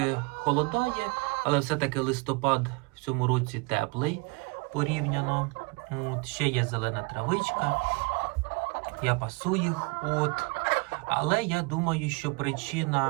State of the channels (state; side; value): quieter; left; 28.3 dB